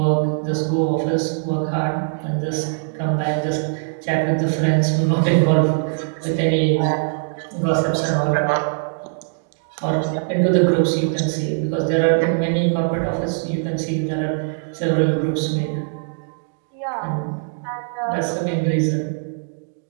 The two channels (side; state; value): left; silent; digital silence